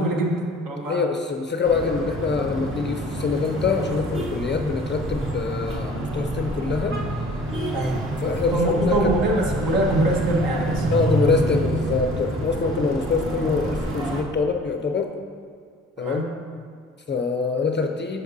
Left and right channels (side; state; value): both; normal; correlation 0.49